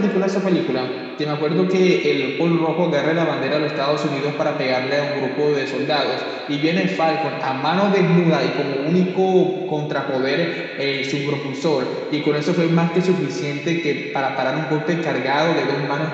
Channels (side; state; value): both; identical; correlation 1.00